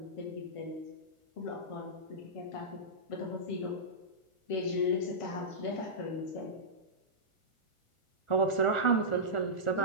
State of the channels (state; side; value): late; right; 1.4 ms